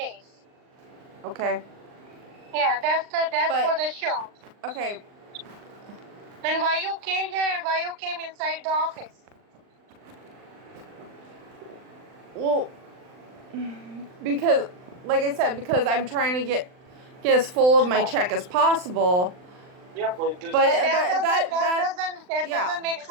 Okay. Yeah, that's for the show. Okay. Then why you came here and why you came inside the office? Well, because, like I said, because I'm trying to get as full of my check as possible. Yeah, but that yeah. doesn't make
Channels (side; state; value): left; late; 39 ms